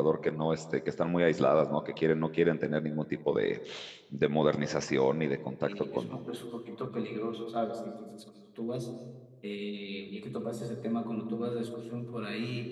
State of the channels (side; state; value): both; identical; correlation 1.00